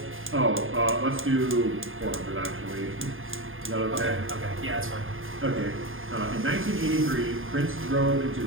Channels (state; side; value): late; left; 0.59 ms